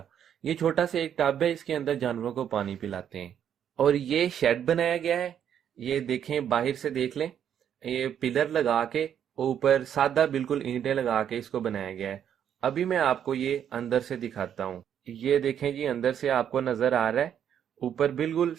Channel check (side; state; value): left; quieter; 9.2 dB